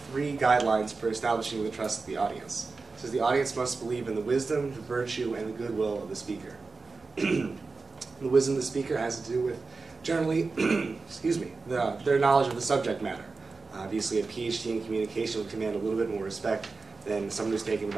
three guidelines for establishing the trust of the audience. It says the audience must believe in the wisdom, the virtue, and the goodwill of the speaker. The wisdom of the speaker has to do with, generally, excuse me, their knowledge of the subject matter. Obviously, a PhD in communication would command a little bit more respect than someone who's taken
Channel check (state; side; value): quieter; left; 4.1 dB